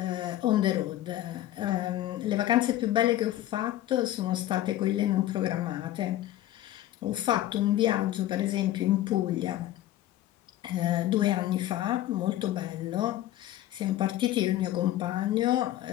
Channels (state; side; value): quieter; right; 13.9 dB